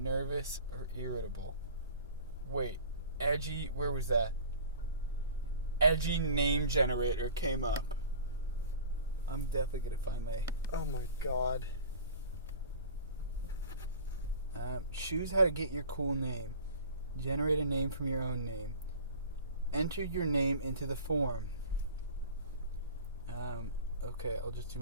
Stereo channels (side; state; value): both; inverted; correlation -0.40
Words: or irritable. Wait, edgy, where was that? Edgy name generator came up. I'm definitely going to find my... Oh my god. Choose how to get your cool name. Generate a name from your own name. Enter your name into the form. Okay, I'll just do